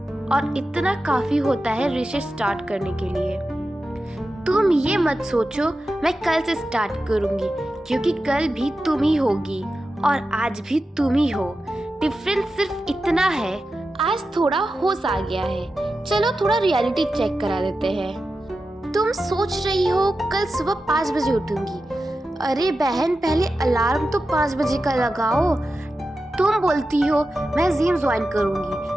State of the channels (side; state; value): both; normal; correlation 0.92